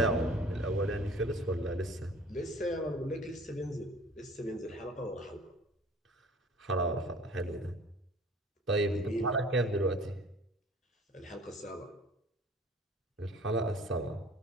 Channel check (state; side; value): normal; both; correlation 0.48